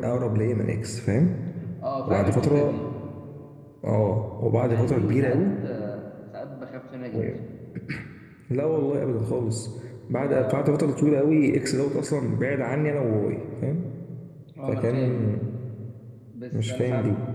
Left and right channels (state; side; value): identical; both; correlation 1.00